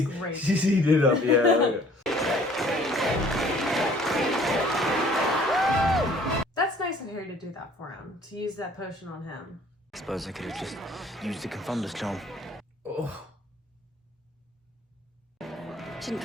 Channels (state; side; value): normal; both; correlation 0.55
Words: great. She's eating it up, yeah. That's nice of Harry to do that for him. To use that potion on him. I suppose I could have just used the Confunder's charm. Oh. Didn't